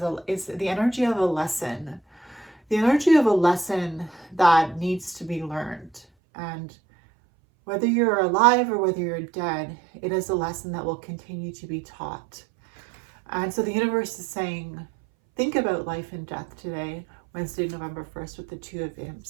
is the energy of a lesson. The energy of a lesson that needs to be learned. And whether you're alive or whether you're dead, it is a lesson that will continue to be taught. And so the universe is saying, think about life and death today, Wednesday, November 1st, with the Two of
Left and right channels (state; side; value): drops out; left; at 6.0 s